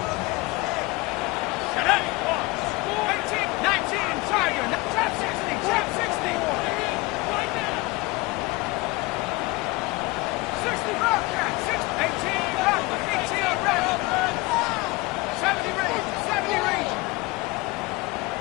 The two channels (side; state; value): right; quieter; 23.0 dB